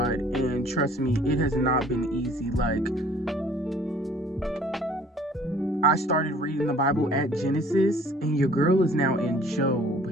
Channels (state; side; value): normal; both; correlation 0.54